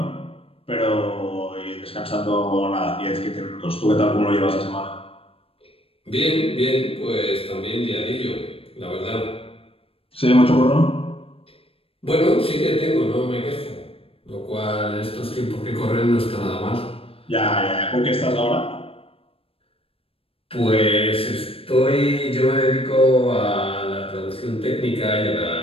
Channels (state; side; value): late; right; 0.27 ms